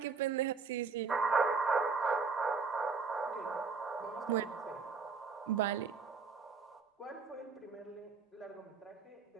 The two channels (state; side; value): quieter; left; 4.9 dB